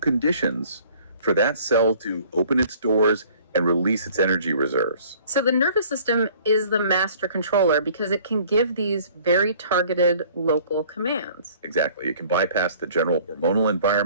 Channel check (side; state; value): both; inverted; correlation -0.53